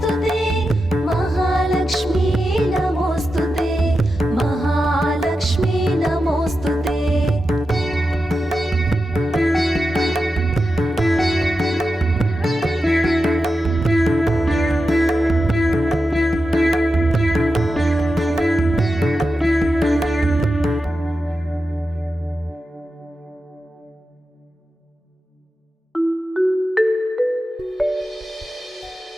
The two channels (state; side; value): normal; both; correlation 0.90